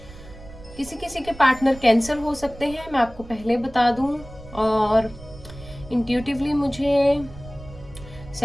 किसी किसी के पार्टनर कैंसर हो सकते हैं, मैं आपको पहले बता दूं। और इंट्यूटिवली मुझे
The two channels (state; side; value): noise; right; rumble, 17 dB below the sound